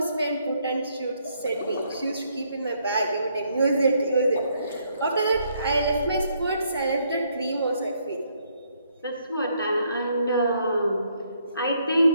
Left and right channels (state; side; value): inverted; both; correlation -0.71